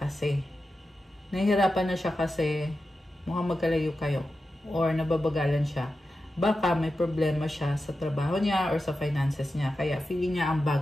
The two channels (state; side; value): normal; both; correlation 0.91